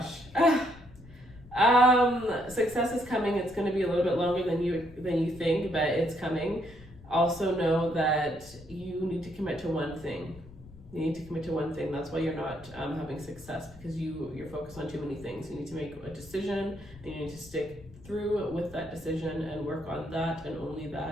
Success is coming. It's going to be a little bit longer than you think, but it's coming. Also know that you need to commit to one thing. You need to commit to one thing. That's why you're not having success, because you're focused on too many things. You need to make a decision, and you need to stick through with that decision and work on that and only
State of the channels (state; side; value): noise; left; rumble, 20 dB below the sound